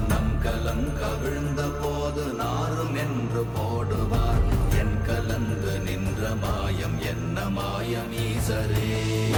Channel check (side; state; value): both; identical; correlation 1.00